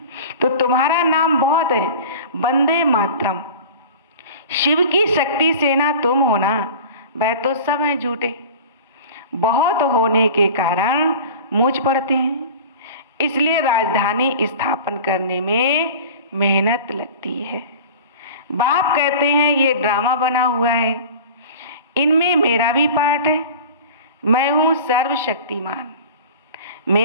तो तुम्हारा नाम बहुत है, वंदे मातरम। शिव की शक्ति सेना तुम हो ना, वह तो सब हैं झूठे। बहुत होने के कारण मूंछ पड़ते हैं, इसलिए राजधानी स्थापन करने में मेहनत लगती है। बाप कहते हैं ये ड्रामा बना हुआ है, इनमें मेरा भी पार्ट है। मैं हूँ सर्वशक्तिमान।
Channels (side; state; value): both; inverted; correlation -0.38